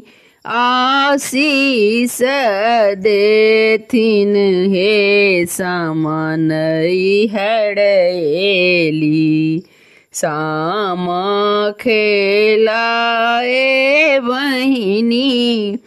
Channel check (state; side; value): identical; both; correlation 1.00